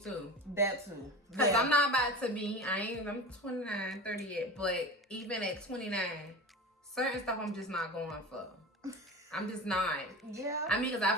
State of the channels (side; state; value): both; normal; correlation 0.31